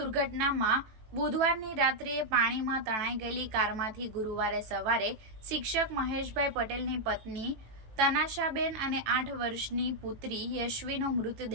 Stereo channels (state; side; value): late; left; 18 ms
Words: બુધવારની રાત્રે પાણીમાં તણાઈ ગયેલી કારમાંથી ગુરુવારે સવારે શિક્ષક મહેશભાઈ પટેલની પત્ની તનાશાબેન અને 8 વર્ષની પુત્રી યશવીનો